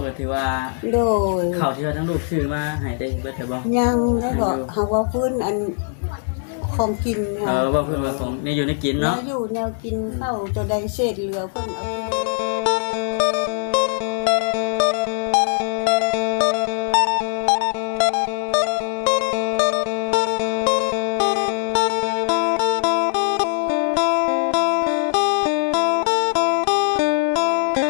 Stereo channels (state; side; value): silent; right; digital silence